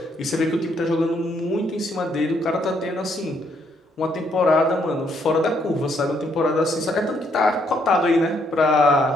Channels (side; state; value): both; normal; correlation 0.71